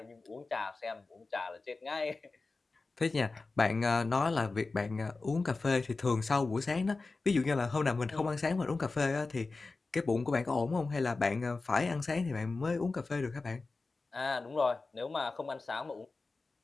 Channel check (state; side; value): quieter; right; 3.7 dB